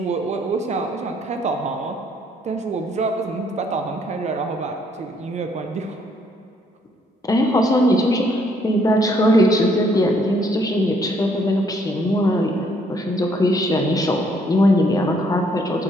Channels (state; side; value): normal; both; correlation 0.67